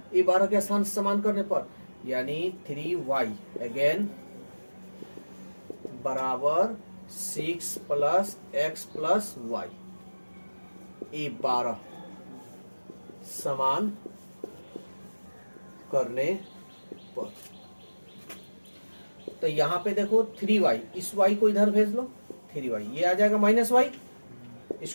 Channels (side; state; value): both; inverted; correlation -1.00